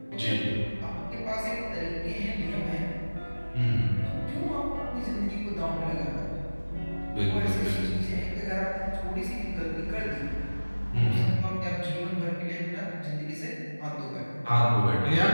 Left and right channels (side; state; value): both; inverted; correlation -1.00